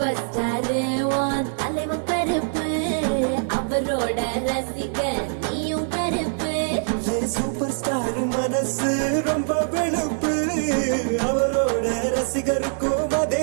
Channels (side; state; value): left; silent; 63 dB below the other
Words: star உன் தலைவன் கருப்பு, அவரோட ரசிகன் நீயும் கருப்பு. சூப்பர் ஸ்டார் மனசு ரொம்ப வெளுப்பு, அவரோட ரசிகருக்கும் அதே